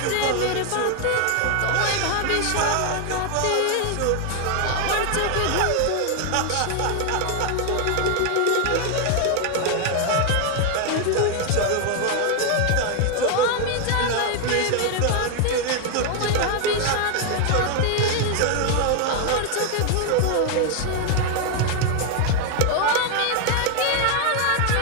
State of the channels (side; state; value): both; different; correlation 0.00